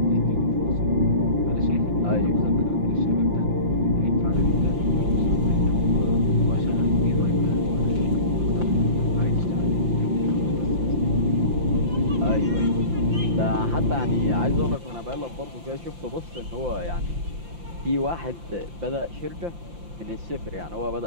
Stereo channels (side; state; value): left; late; 5.8 ms